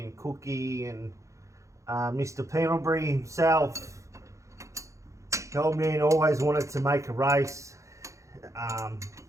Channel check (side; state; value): left; late; 0.15 ms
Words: and Cookie and Mr. Pendlebury himself, the old man always wanted to make a race,